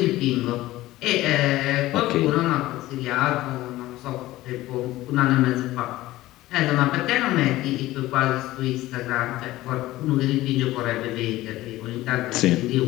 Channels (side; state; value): right; quieter; 16.8 dB